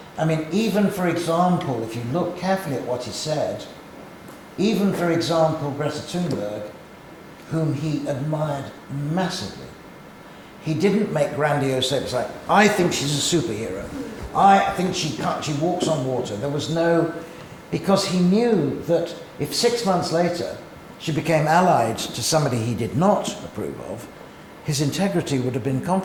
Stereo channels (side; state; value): both; identical; correlation 1.00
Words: I mean, even for example, if you look carefully at what he said, even for example, Greta Thunberg, whom he admired massively, he didn't make grandiose statements like, I think she's a superhero. I think she walks on water. There was no, because he knew that if 6 months later she became allied to somebody he did not approve of, his integrity would have been